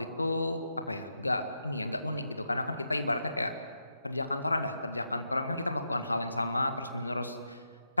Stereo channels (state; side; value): inverted; both; correlation -0.83